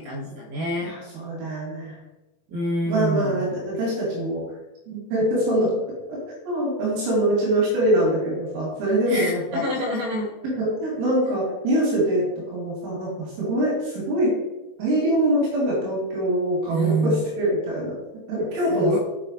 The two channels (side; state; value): left; late; 22 ms